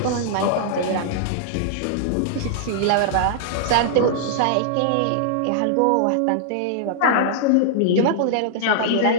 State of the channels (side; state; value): both; different; correlation -0.01